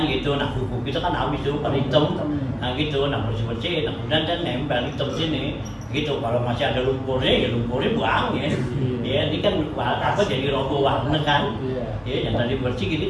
gitu. Nah buku kita kan habis tuh pada hitam, nah gitu, nah bersih nah kemudian kan nempel hitam sini gitu. Kalau masih ada lumpurnya ya lumpurnya buang ya. Ya ini kan apa jadi roboh warna kan. Ya yang tadi bersih gini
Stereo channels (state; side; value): identical; both; correlation 1.00